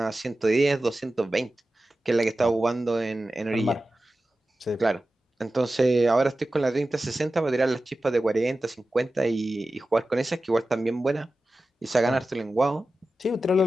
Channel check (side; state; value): both; normal; correlation 0.94